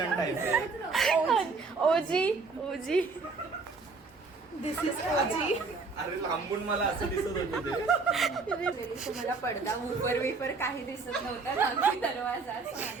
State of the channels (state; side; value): quieter; left; 4.3 dB